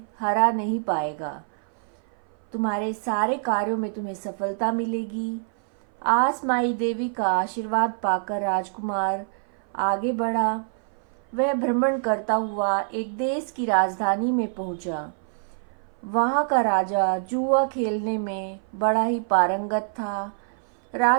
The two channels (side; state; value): left; silent; 58 dB below the other